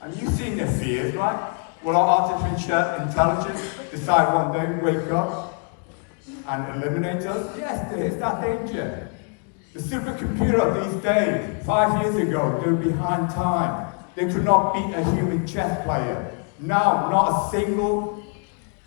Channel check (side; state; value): right; quieter; 39.7 dB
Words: And you've seen the fears, right? Will our artificial intelligence decide one day, wake up and eliminate us? Yes, there is that danger. The supercomputer of these days, 5 years ago, they were behind time. They could not beat a human chess player. Now, not a single